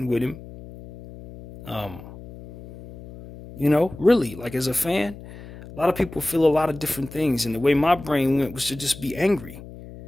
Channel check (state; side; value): noise; left; hum, 16 dB below the sound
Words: with him. You know, really, like as a fan, a lot of people feel a lot of different things, and the way my brain went was to just be angry.